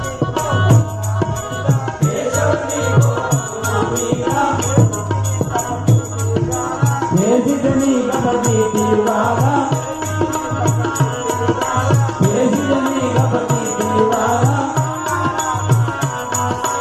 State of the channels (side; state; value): both; identical; correlation 1.00